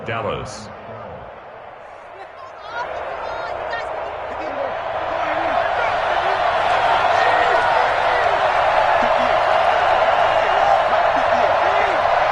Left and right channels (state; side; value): identical; both; correlation 1.00